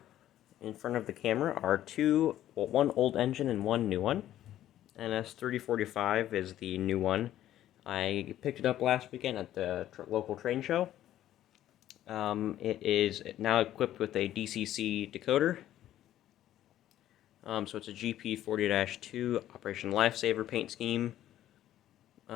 in front of the camera are one old engine and one new one. NS3045 is the new one. I picked it up last weekend at the local train show. It is now equipped with a DCC decoder. So it's a GP40-2 Operation Lifesaver paint scheme.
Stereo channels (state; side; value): quieter; right; 12.6 dB